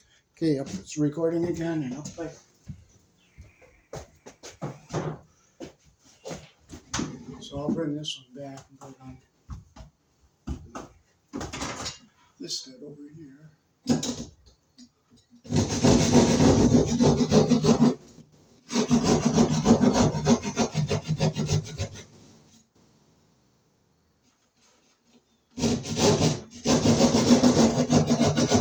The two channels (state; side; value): identical; both; correlation 1.00